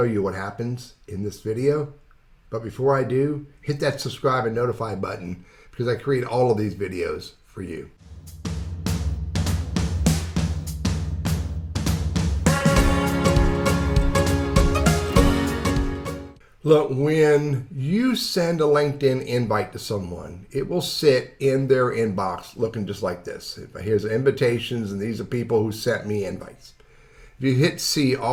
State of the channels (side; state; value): both; identical; correlation 1.00